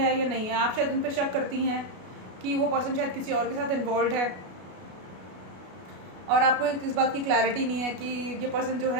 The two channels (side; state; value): left; late; 33 ms